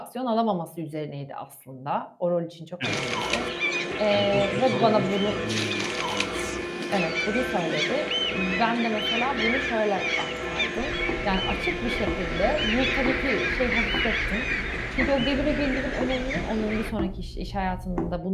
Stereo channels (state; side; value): identical; both; correlation 1.00